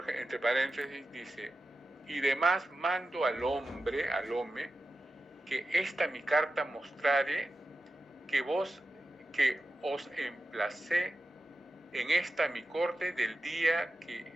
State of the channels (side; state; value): both; normal; correlation 0.92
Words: entre paréntesis dice, y demás mando al hombre, al home, que esta mi carta mostrare que os emplacé en esta mi corte del día que